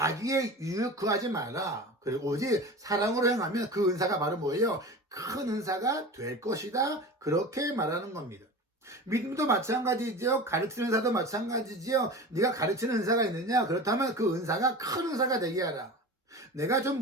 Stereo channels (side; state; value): both; normal; correlation 0.33